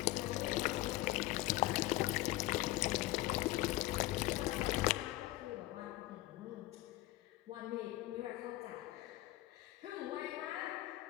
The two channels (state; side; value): quieter; right; 17.4 dB